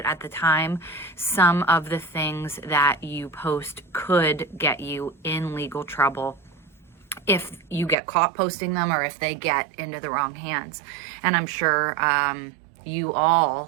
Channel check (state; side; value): drops out; left; at 8.0 s